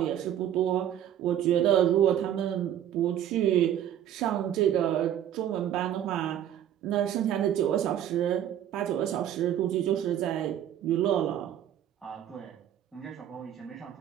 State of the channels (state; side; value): quieter; left; 10.7 dB